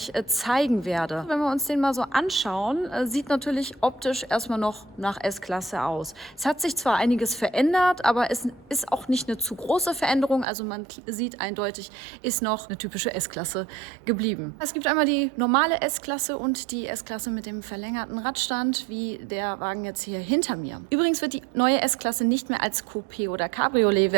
zeigen werde. Wenn wir uns den mal so anschauen, sieht natürlich optisch erstmal noch nach S-Klasse aus. Es hat sich zwar einiges verändert, aber es ist auch nicht eine zu große Veränderung. Also man sieht eindeutig, ist noch eine typische S-Klasse geblieben. Es gibt einmal die normale S-Klasse und die S-Klasse mit dem verlängerten Radstand, wie der Wagen jetzt hier hinter mir. Übrigens wird die neue S-Klasse nicht mehr als Coupé- oder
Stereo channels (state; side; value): drops out; left; at 10.5 s